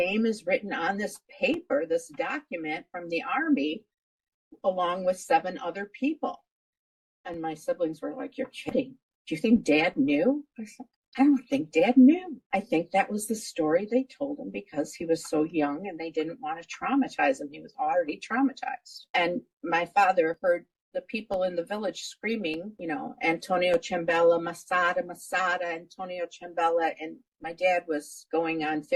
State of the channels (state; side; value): identical; both; correlation 1.00